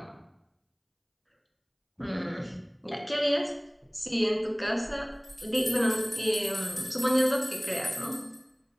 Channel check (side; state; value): both; identical; correlation 1.00